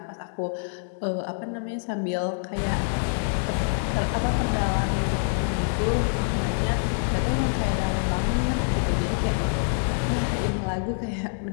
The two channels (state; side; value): silent; right; digital silence